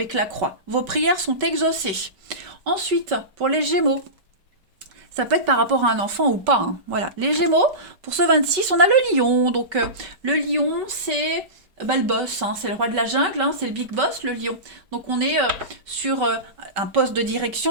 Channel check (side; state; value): left; late; 5.2 ms